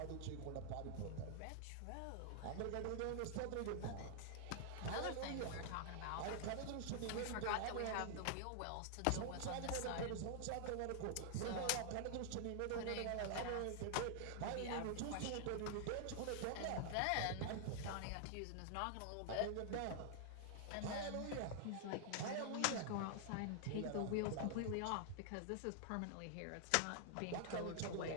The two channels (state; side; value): different; both; correlation -0.01